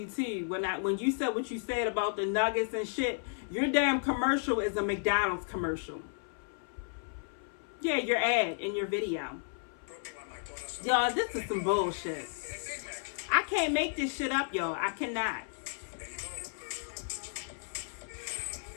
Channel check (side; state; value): right; silent; 56 dB below the other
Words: too. When you said what you said about the nuggets and shit, your damn commercial is a McDonald's commercial. Yeah, your ad in your video. Y'all, this is some bullshit. I can't make this shit up, y'all. I cannot.